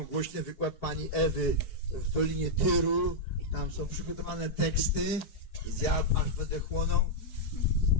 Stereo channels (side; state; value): right; late; 4.7 ms